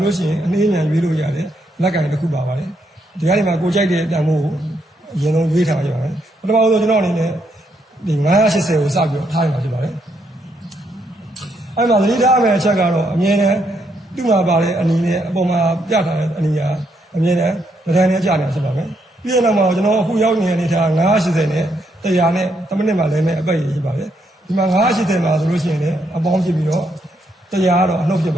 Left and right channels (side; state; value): both; normal; correlation 0.76